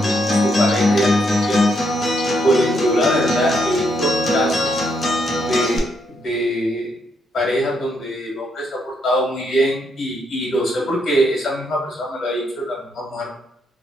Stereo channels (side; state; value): both; normal; correlation 0.76